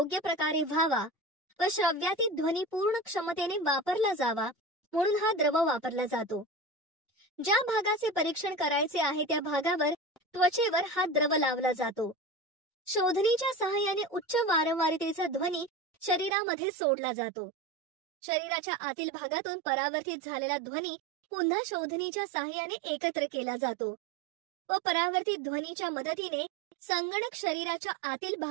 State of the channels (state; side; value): drops out; left; at 16.3 s